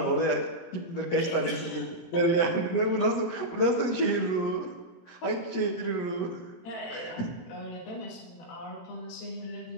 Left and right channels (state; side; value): late; right; 18 ms